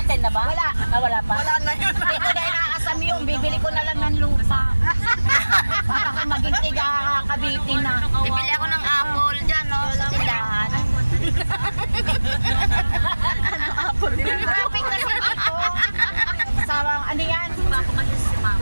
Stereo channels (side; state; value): both; inverted; correlation -1.00